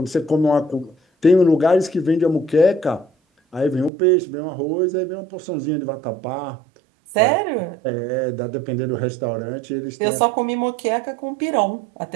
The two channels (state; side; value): drops out; left; at 3.9 s